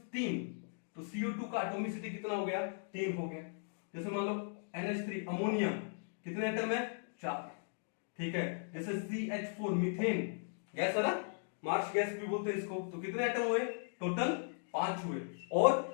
3, तो CO2 का एटॉमिसिटी कितना हो गया, 3 हो गया। जैसे मान लो NH3 अमोनिया, कितने एटम है, 4, ठीक है। जैसे CH4 मीथेन गैस है ना, मार्स गैस भी बोलते हैं इसको, तो कितने एटम हुए, टोटल 5 हुए।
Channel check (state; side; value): silent; right; digital silence